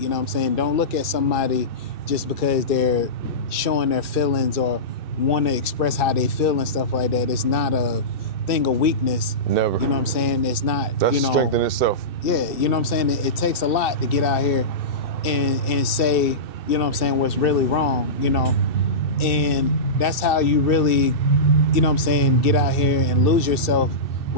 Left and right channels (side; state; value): right; late; 2.7 ms